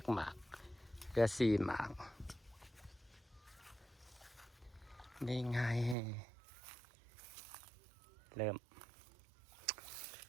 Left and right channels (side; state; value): left; drops out; at 6.0 s